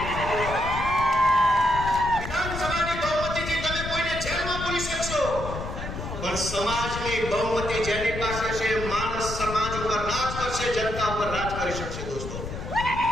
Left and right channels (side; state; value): left; noise; rumble, 7 dB below the sound